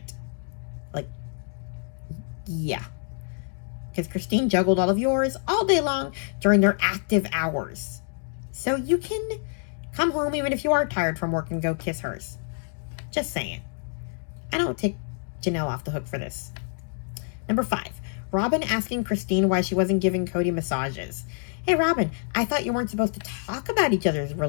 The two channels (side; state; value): right; silent; 55 dB below the other